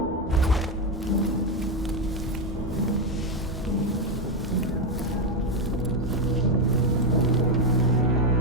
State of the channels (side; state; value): both; normal; correlation 0.07